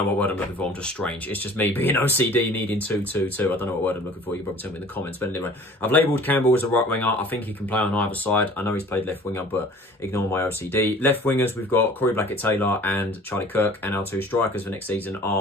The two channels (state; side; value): normal; both; correlation 0.48